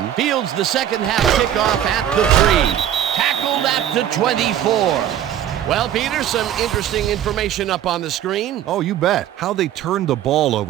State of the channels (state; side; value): quieter; left; 10.8 dB